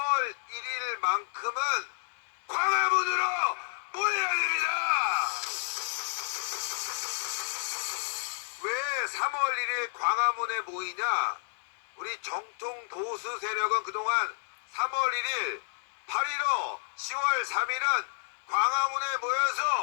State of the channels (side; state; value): right; silent; digital silence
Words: 1일만큼은 광화문으로 모여야 됩니다. 왜 3월 1일 광화문에 모이냐? 우리 정통 보수 세력은 그동안 3월 1일, 8.15, 10월 3일은 광화문에